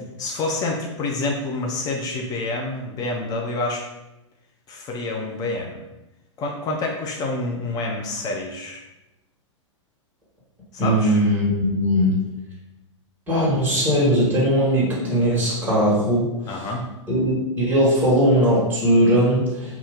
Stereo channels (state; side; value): normal; both; correlation -0.06